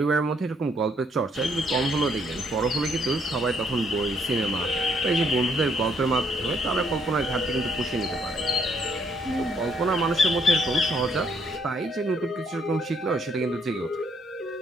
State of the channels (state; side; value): normal; both; correlation 0.70